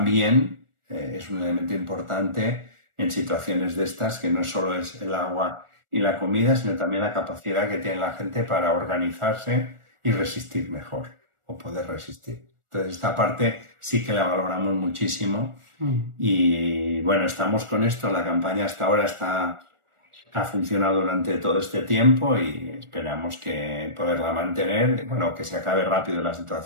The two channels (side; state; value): left; late; 1.4 ms